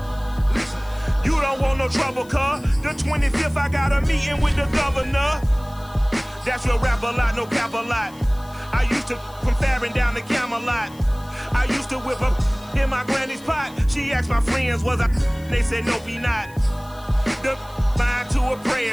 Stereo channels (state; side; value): noise; left; hiss, 24 dB below the sound